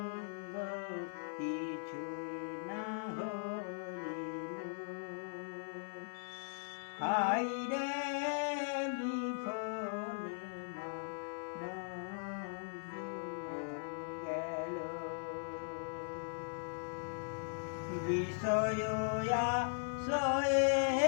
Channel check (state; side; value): silent; right; 51 dB below the other